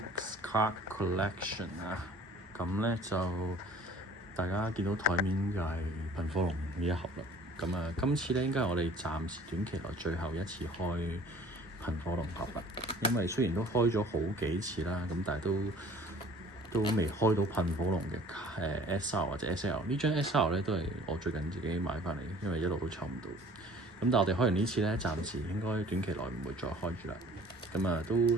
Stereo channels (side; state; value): both; normal; correlation 0.50